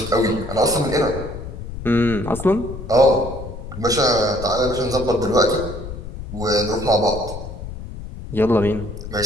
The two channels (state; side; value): noise; left; rumble, 10 dB below the sound